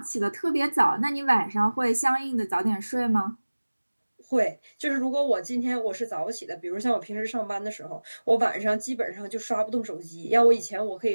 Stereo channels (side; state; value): both; inverted; correlation -1.00